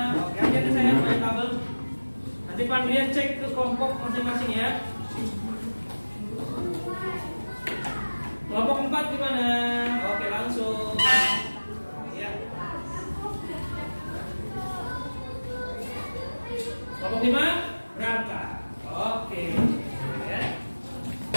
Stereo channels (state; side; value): inverted; both; correlation -1.00